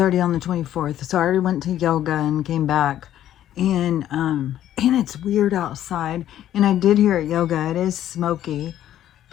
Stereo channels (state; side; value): quieter; right; 11.9 dB